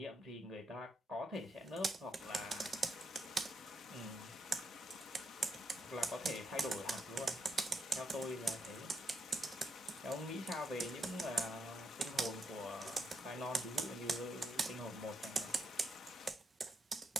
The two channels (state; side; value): normal; both; correlation 0.81